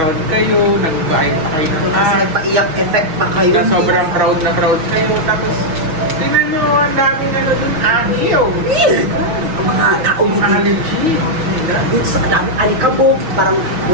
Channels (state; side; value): late; left; 6.2 ms